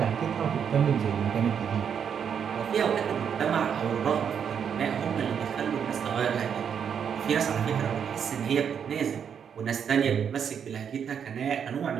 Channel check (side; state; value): left; quieter; 7.7 dB